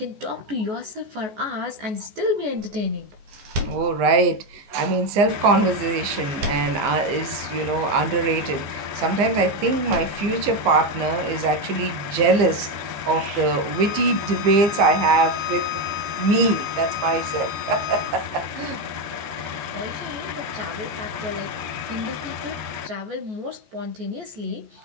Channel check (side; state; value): left; late; 15 ms